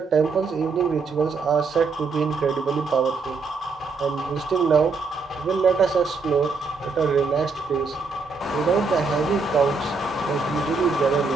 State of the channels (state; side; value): quieter; left; 4.4 dB